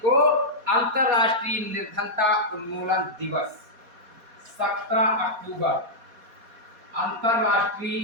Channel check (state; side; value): late; left; 4.2 ms